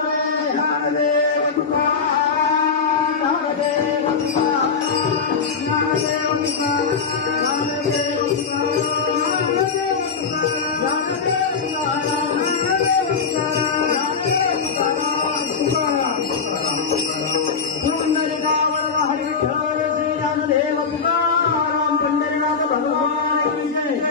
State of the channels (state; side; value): quieter; right; 5.5 dB